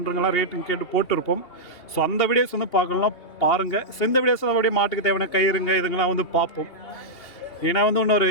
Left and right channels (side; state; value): right; late; 2.7 ms